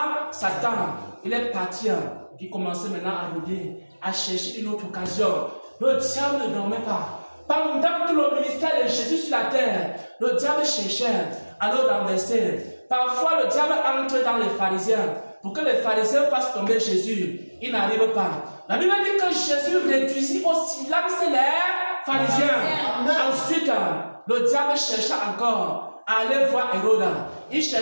Satan. Il est parti. Il commençait maintenant à rôder, à chercher une autre occasion. Le diable ne dormait pas. Pendant tout le ministère de Jésus sur la terre, le diable cherchait à le renverser. Parfois, le diable entre dans les pharisiens pour que les pharisiens fassent tomber Jésus. Il n'arrive pas. La Bible dit que Jésus réduisit influencer les pharisiens. Ensuite, le diable chercha encore à aller voir Hérode. Il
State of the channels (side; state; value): both; inverted; correlation -1.00